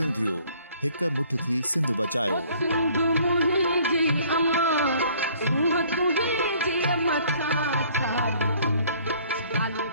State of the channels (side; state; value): both; inverted; correlation -0.57